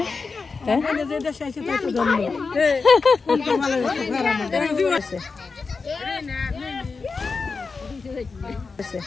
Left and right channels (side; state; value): right; quieter; 4.5 dB